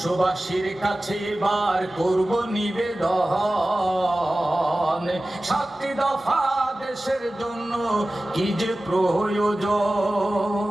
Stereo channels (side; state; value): both; normal; correlation 0.96